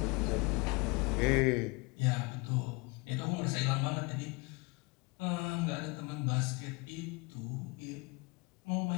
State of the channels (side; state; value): right; quieter; 27.9 dB